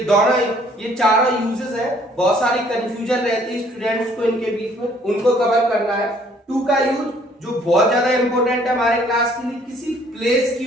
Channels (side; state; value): both; normal; correlation 0.60